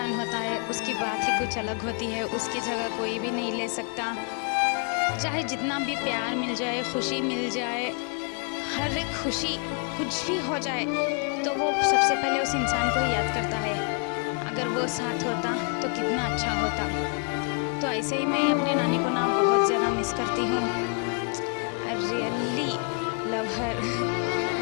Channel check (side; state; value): right; quieter; 38.3 dB